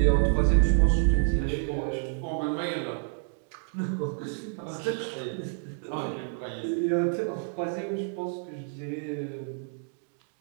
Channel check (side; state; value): left; silent; 59 dB below the other